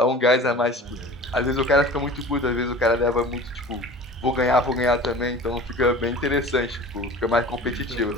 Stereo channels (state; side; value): normal; both; correlation 0.40